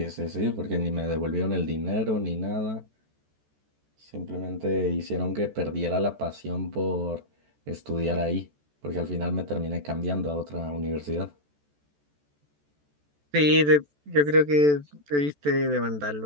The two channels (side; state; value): left; late; 14 ms